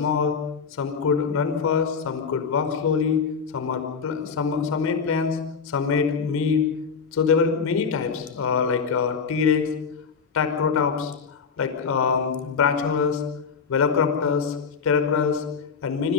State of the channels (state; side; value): quieter; right; 5.8 dB